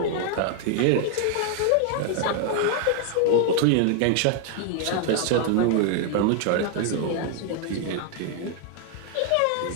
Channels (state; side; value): different; both; correlation 0.00